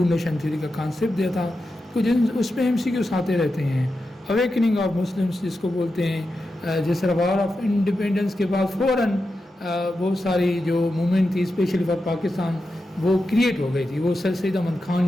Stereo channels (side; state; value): both; normal; correlation 0.89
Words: نیشن تھیوری کا کانسیپٹ دیا تھا. کچھ اس میں MCQs آتے رہتے ہیں. اویکننگ آف مسلمس جس کو بولتے ہیں, جس طرح وار آف انڈیپینڈنس کے بعد فوراً بہت ساری جو موومنٹ تھی اسپیشلی فار پاکستان وہ کریٹ ہو گئی تھی. وہ سر سید احمد خان